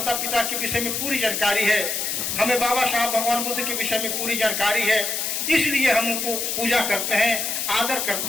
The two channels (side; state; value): left; noise; hiss, 1 dB below the sound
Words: पिता के विषय में पूरी जानकारी है, हमें बाबा साहब भगवान बुद्ध के विषय में पूरी जानकारी है, इसलिए हम उनको पूजा करते हैं, आदर